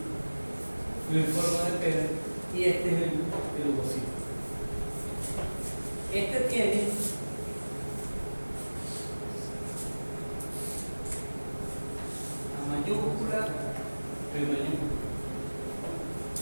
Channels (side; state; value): both; inverted; correlation -1.00